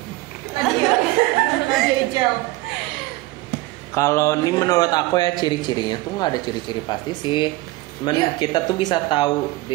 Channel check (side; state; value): left; quieter; 19.6 dB